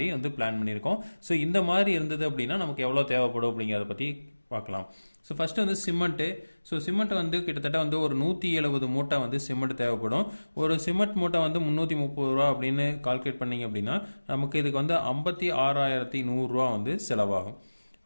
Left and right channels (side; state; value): both; inverted; correlation -1.00